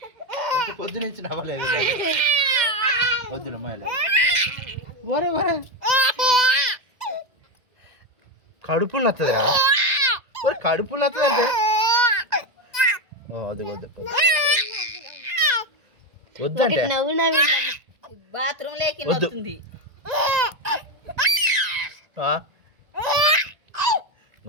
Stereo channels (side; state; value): left; late; 2.0 ms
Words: పొద్దు నుంచి నవ్వలేదు. వద్దు ఒరే ఒరే కడుపు నచ్చదురా. ఒరే కడుపు నచ్చదు అంటే వద్దు వద్దు వద్దంటే నవ్వు నవ్వి బాత్రూమ్ లేకి వద్దు.